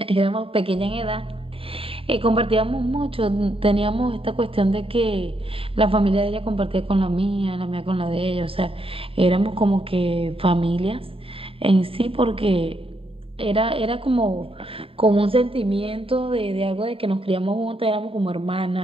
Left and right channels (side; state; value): left; late; 0.27 ms